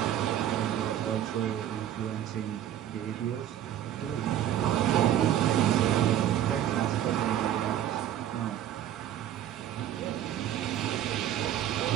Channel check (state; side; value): quieter; left; 11.3 dB